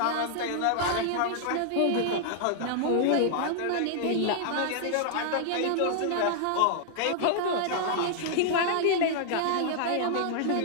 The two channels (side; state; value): both; different; correlation -0.01